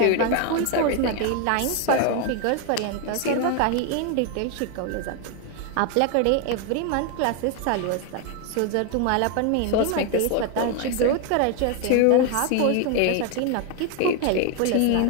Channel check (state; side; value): different; both; correlation 0.01